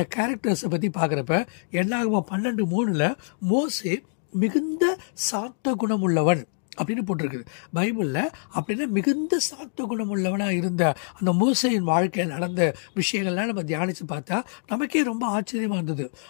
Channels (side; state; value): right; silent; digital silence